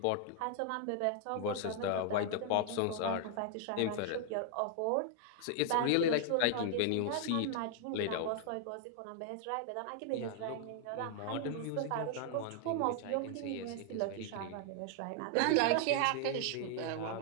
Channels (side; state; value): both; different; correlation 0.00